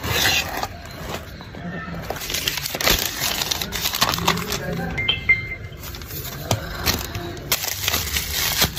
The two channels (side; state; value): both; identical; correlation 1.00